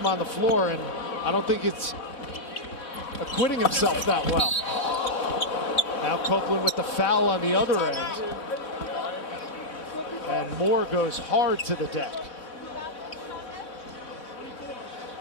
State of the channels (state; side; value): late; right; 3.8 ms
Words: on the floor, and I don't think it's acquitting himself that well. Now Copeland with the foul on the other end. And Moore goes hard to the deck.